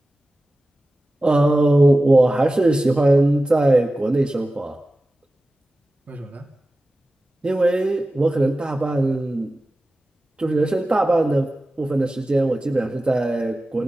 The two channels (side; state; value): both; normal; correlation 0.95